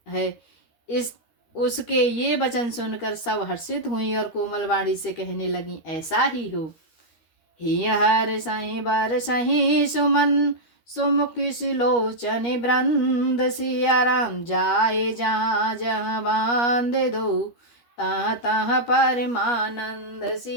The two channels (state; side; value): late; right; 13 ms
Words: है। उसके ये वचन सुनकर सब हर्षित हुई और कोमल वाणी से कहने लगी, ऐसा ही हो। ही हर सही बर सही सुमन सुमुखी सुलोचन वृंद सिया राम जाए जहाँ जहाँ बांध दो तहाँ तहाँ परमानंद